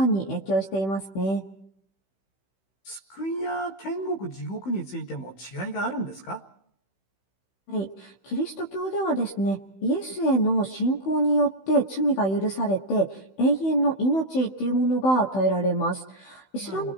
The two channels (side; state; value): right; late; 16 ms